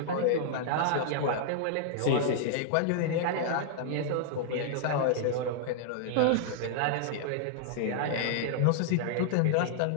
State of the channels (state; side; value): different; both; correlation -0.01